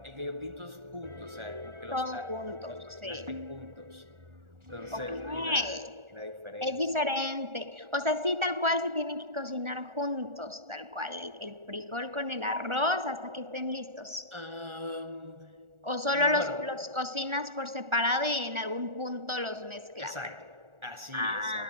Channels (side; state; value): left; late; 1.4 ms